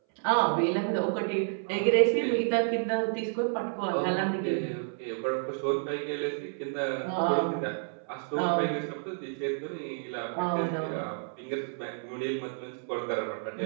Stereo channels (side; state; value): left; silent; 58 dB below the other